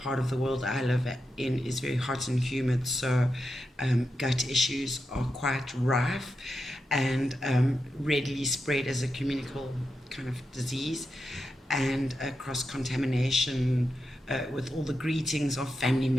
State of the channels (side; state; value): both; normal; correlation 0.88